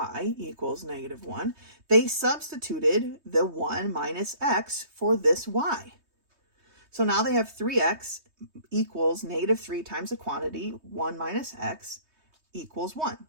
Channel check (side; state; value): left; late; 3.2 ms